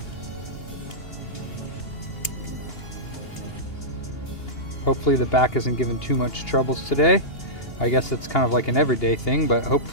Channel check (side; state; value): right; late; 2.8 ms